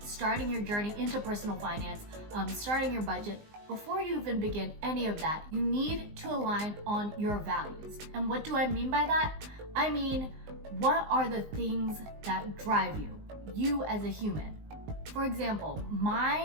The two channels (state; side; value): late; left; 19 ms